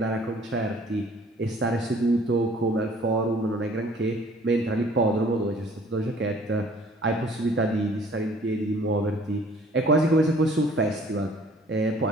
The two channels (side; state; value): both; normal; correlation 0.54